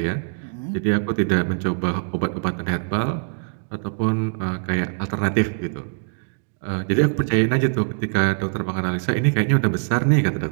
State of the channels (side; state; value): left; silent; digital silence